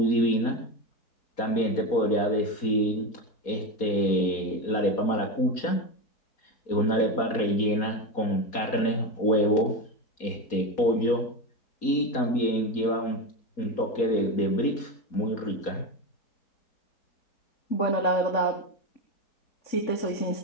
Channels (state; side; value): late; right; 4.2 ms